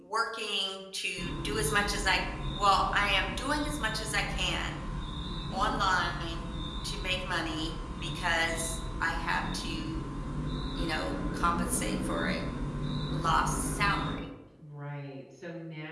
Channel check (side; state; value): both; identical; correlation 1.00